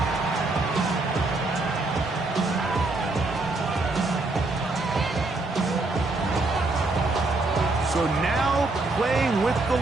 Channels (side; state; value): left; quieter; 3.2 dB